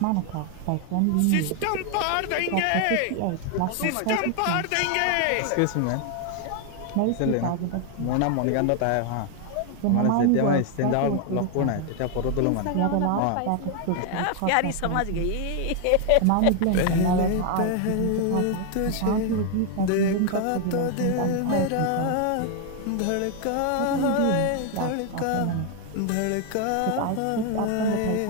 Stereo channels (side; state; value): both; different; correlation 0.00